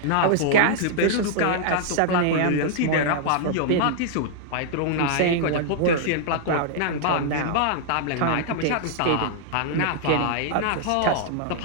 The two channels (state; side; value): different; both; correlation -0.01